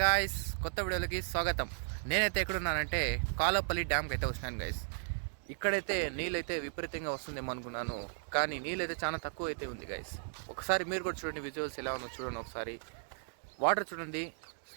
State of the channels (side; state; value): left; silent; digital silence